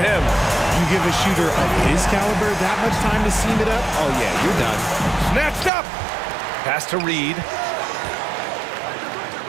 You give a shooter of his caliber that much time to seam it up? Oh, yeah, you're done. Snatched up. Pass to Reed.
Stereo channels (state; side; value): drops out; left; at 5.7 s